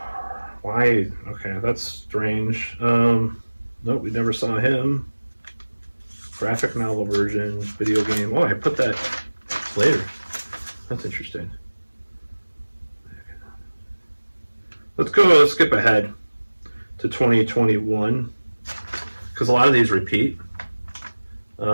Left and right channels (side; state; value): both; inverted; correlation -1.00